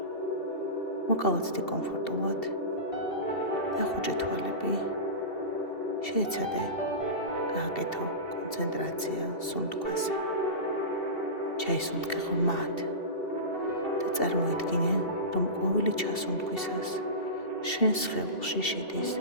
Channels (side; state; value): right; late; 2.7 ms